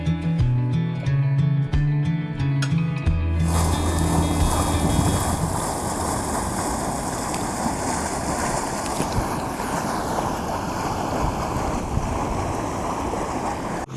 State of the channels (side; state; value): both; identical; correlation 1.00